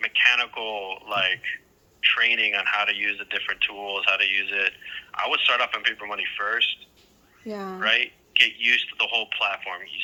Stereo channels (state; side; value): identical; both; correlation 1.00